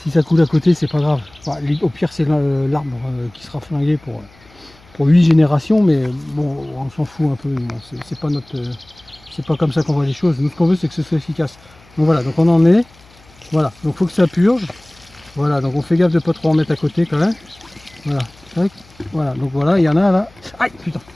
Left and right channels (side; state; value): left; noise; hum, 27 dB below the sound